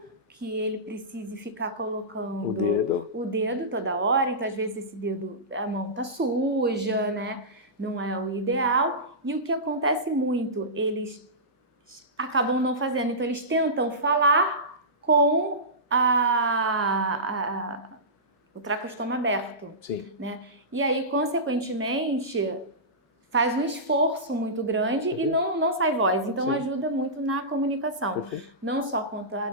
que ele precise ficar colocando o dedo toda hora. Então, às vezes, a mão tá suja, né? Não é o ideal. E o que acontece muito, eles acabam não fazendo. Então, eles tentam falar com o traqueostoma aberto. Sim. Né? E aí, consequentemente, faz um esforço muito grande e não sai voz. Então Sim. ajuda muito na comunicação. Perfeito. Não só quanto à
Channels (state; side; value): normal; both; correlation -0.18